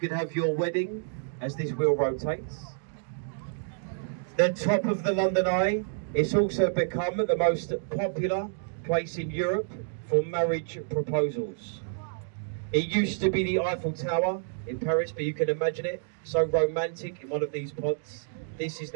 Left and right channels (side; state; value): left; silent; digital silence